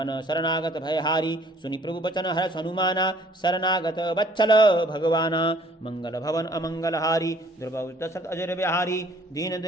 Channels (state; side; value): normal; both; correlation 0.57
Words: शरणागत भयहारी। सुनि प्रभु बचन हर्ष हनुमाना, शरणागत वत्सल भगवाना। मंगल भवन अमंगल हारी, द्रवौ दशरथ अजिर बिहारी। दीन